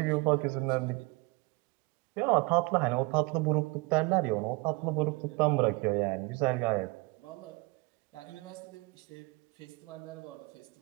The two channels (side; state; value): left; quieter; 25.6 dB